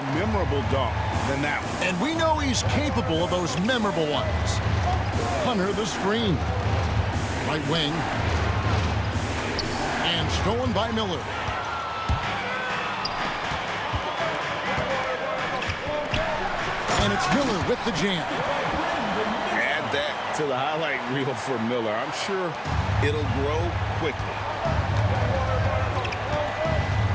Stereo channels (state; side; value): identical; both; correlation 1.00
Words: memorable dunk than that one. And we know he's capable of those memorable ones. Hunter the screen. Right wing. And stolen by Miller. And it's Miller with the jam. Add that to the highlight reel for Miller. I'm sure it'll grow quickly.